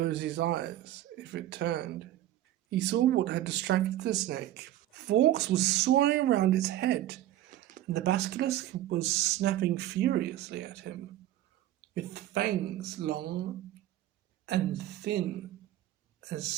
his eyes if it turned, he saw what had distracted the snake. Fawkes was soaring around its head, and the basilisk was snapping furiously at him, with fangs long and thin as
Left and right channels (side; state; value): left; quieter; 13.7 dB